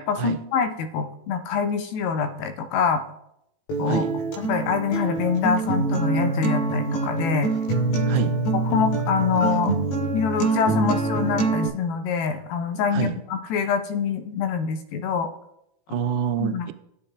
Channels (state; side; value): late; right; 18 ms